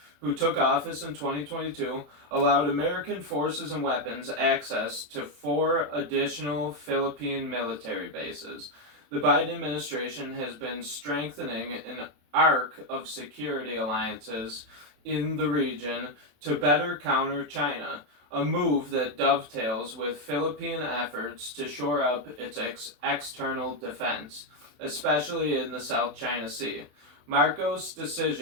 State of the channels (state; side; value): late; left; 27 ms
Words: who took office in 2022, allowed American forces and weapons access to 4 additional Philippine military bases. The Biden administration has been strengthening an arc of security alliances in the region to better counter China, a move that dovetails with Philippine efforts to shore up its external defense, especially in the South China Sea. Marcos'